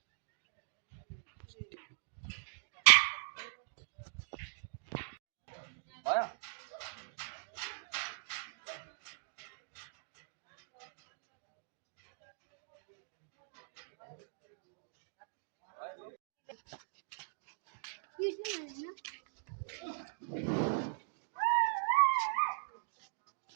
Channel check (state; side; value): silent; left; digital silence